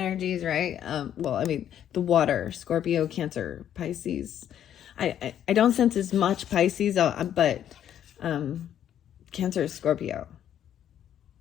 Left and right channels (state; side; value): quieter; right; 10.2 dB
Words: right? The water, Scorpio, Cancer, Pisces. I don't sense as much Pisces, but Cancer, Scorpio.